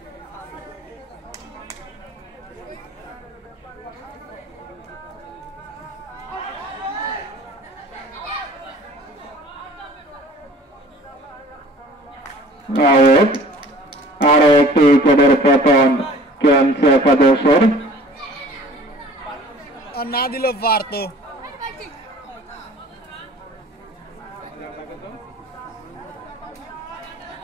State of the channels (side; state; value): both; normal; correlation 0.49